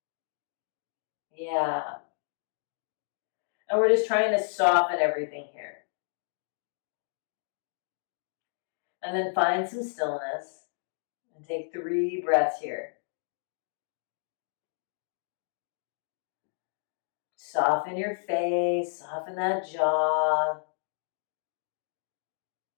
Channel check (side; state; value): right; silent; digital silence